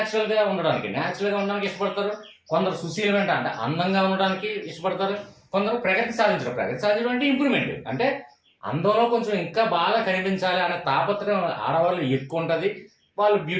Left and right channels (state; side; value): identical; both; correlation 1.00